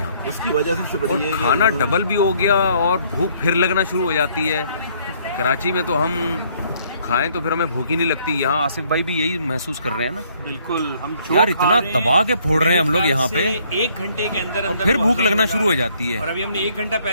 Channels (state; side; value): inverted; both; correlation -0.65